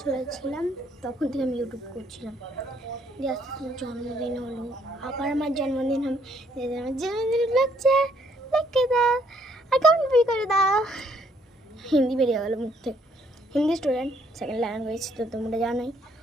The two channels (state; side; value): normal; both; correlation 0.68